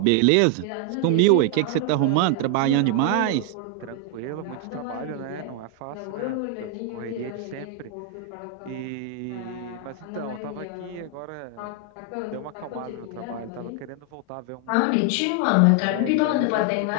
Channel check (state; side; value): different; both; correlation 0.00